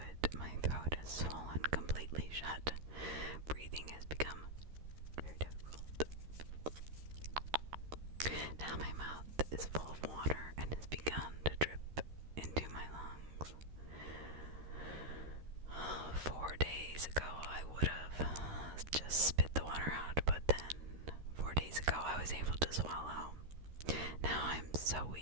My throat is swollen completely shut. Breathing has become very difficult. Now my mouth is full of water and has begun to drip into my lungs. 4 days ago I would have just spit the water out, but then 4 days ago I was able to swallow. Now I'm so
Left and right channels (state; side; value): late; left; 13 ms